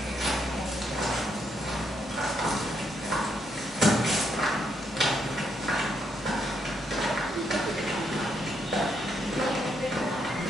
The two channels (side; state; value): both; normal; correlation 0.77